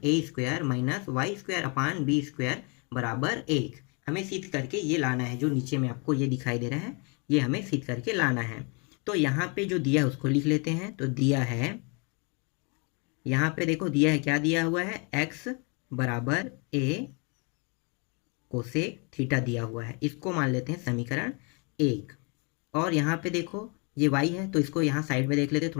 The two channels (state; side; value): quieter; right; 33.8 dB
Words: a square minus y square upon b square बराबर 1। हमें सिद्ध करके ये लाना है, जो नीचे में आपको ये दिखाई दे रहा है, ये हमें सिद्ध करके लाना है। तो यहाँ पे जो दिया है उसको लिख लेते हैं। तो दिया है, यहाँ पे देखो दिया है, क्या दिया हुआ है, x बराबर a कोसेक थीटा दिया हुआ है, इसको मान लेते हैं समीकरण 1। और यहाँ पे देखो ये y है, तो इसको यहाँ साइड में देख लेते हैं